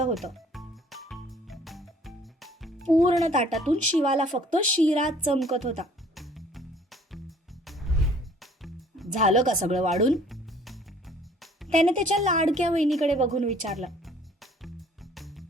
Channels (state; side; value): normal; both; correlation 0.57